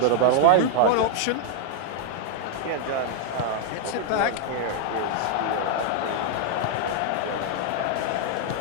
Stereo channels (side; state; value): both; different; correlation 0.00